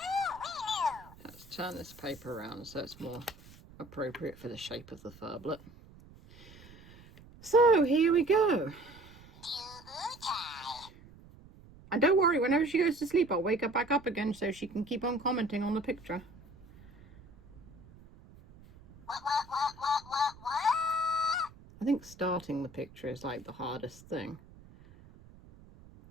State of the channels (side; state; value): right; noise; rumble, 22 dB below the sound